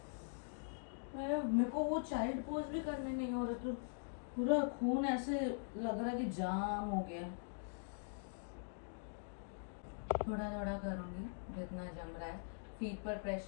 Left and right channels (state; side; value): silent; right; digital silence